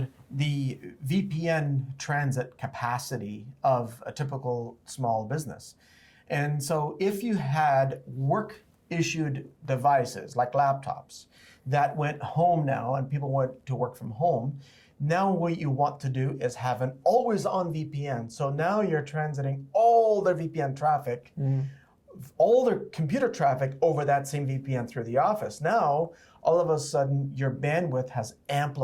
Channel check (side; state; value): both; identical; correlation 1.00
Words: the VPN transit capacity of a typical small business. And so if you had work-issued devices like laptops that went home now and people went to work from home, now what you want to do is have an always-on VPN. So now you're transiting all their VPN traffic, all their computer traffic over that same VPN through the office. Now, all of a sudden, your bandwidth has